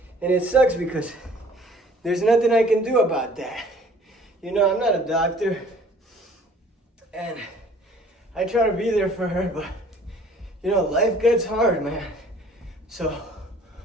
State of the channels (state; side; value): normal; both; correlation 0.53